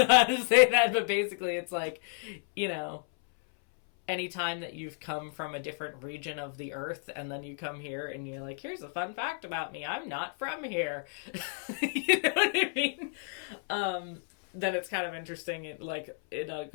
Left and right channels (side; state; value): right; silent; 57 dB below the other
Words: how to say that, but basically it's like, anytime that you've come from a different region of the earth and then you come here and you're like, here's a fun fact about me, I'm not from here. You know what I mean? Then it's kind of interesting,